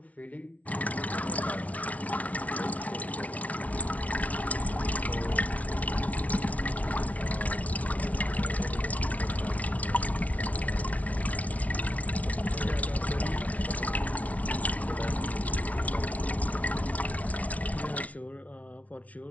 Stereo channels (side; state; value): right; late; 0.068 ms